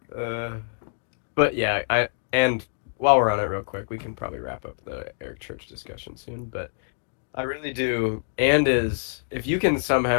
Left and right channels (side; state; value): right; silent; digital silence